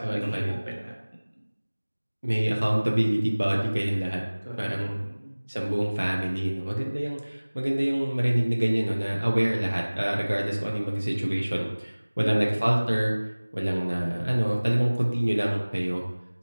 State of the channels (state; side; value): inverted; both; correlation -1.00